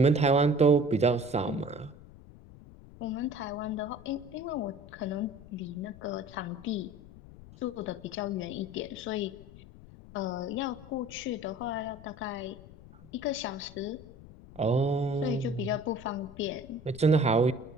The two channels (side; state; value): left; noise; rumble, 19 dB below the sound